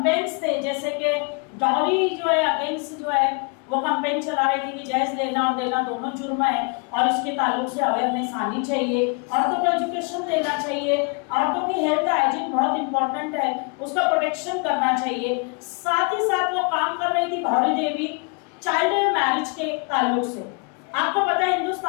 थे, जैसे कि डॉरी जो है अगेंस्ट जो है वो कैंपेन चला रही थी कि जहेज लेना और देना दोनों जुर्म है और इसके ताल्लुक से अवेयरनेस आनी चाहिए, औरतों को एजुकेशन देना चाहिए, औरतों की हेल्थ हाइजीन बहुत इंपॉर्टेंट है, उसका प्रोटेक्शन करना चाहिए। साथ ही साथ वो काम कर रही थी भौरी देवी चाइल्ड मैरिज के ताल्लुक से। आपको पता है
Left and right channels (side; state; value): right; quieter; 34.2 dB